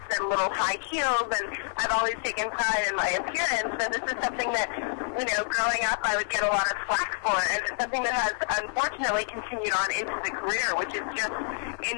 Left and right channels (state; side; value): silent; right; 59 dB below the other